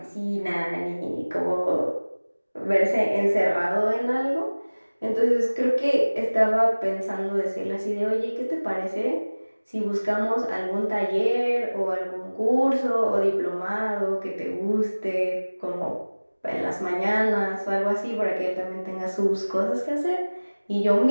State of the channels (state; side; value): inverted; both; correlation -1.00